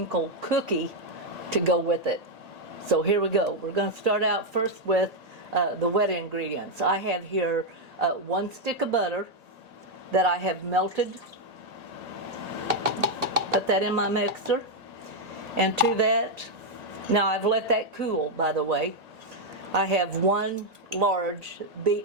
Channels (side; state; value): left; late; 1.8 ms